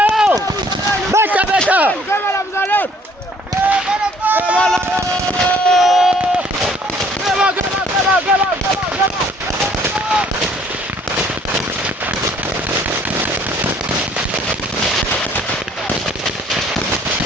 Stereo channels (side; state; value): both; normal; correlation 0.60